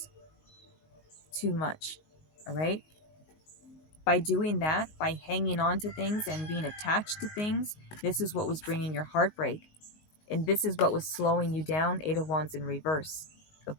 too much. All right. By doing that, by hanging on to things and being attached to things, this is what was bringing your heartbreak. And this is what was slowing you down. Eight of Wands in reverse.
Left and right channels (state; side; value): late; right; 19 ms